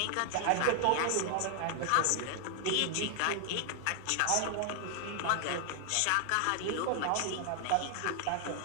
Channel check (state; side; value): different; both; correlation 0.00